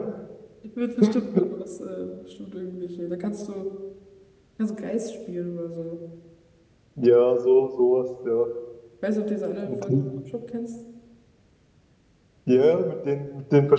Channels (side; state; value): both; identical; correlation 1.00